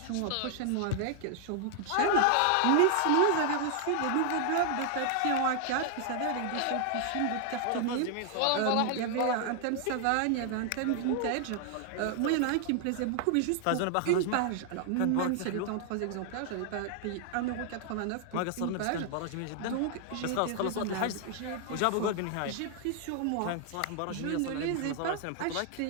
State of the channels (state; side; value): different; both; correlation 0.00